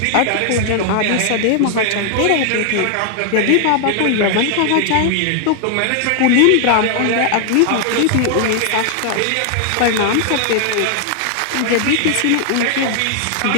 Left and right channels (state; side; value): different; both; correlation 0.00